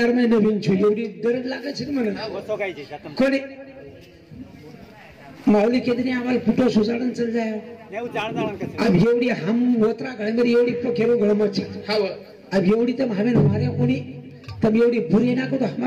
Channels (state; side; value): identical; both; correlation 1.00